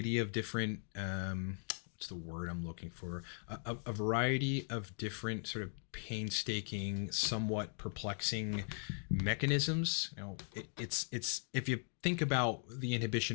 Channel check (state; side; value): silent; right; 52 dB below the other